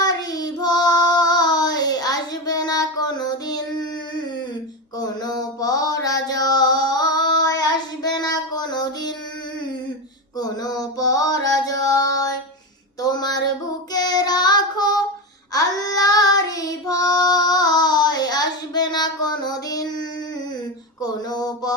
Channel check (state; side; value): normal; both; correlation 0.16